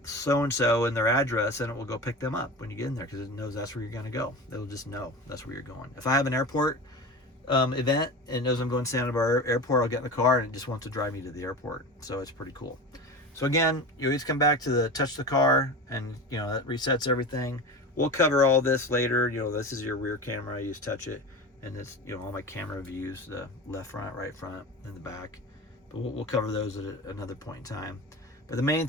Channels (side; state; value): both; normal; correlation 0.30